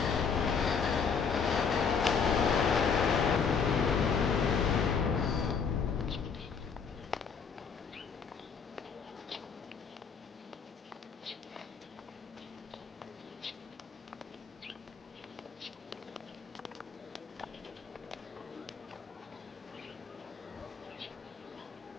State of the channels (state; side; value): quieter; right; 6.1 dB